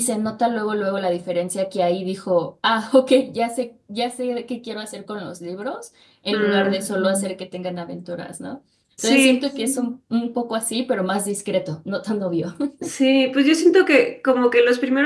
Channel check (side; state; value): both; identical; correlation 1.00